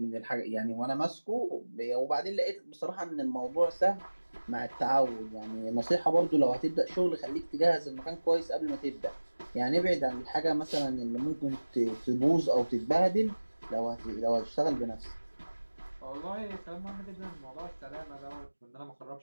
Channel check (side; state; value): both; inverted; correlation -1.00